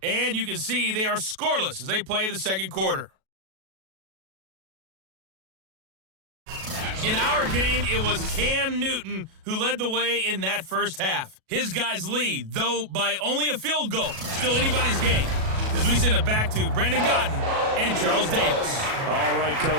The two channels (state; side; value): late; left; 37 ms